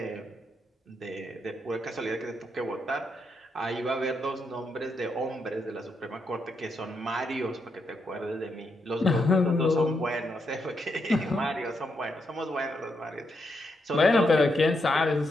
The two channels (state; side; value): normal; both; correlation 0.81